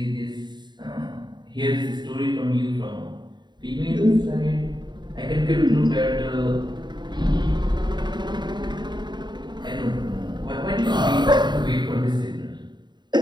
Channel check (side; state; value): left; late; 0.21 ms